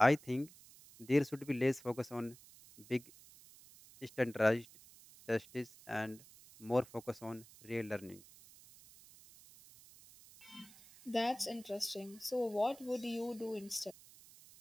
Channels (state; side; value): noise; right; hiss, 21 dB below the sound